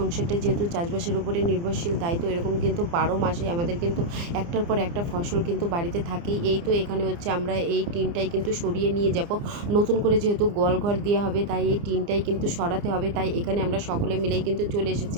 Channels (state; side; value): late; left; 29 ms